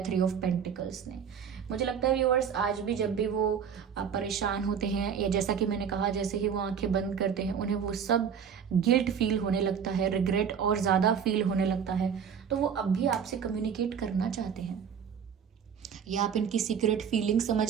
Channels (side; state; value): left; quieter; 7.4 dB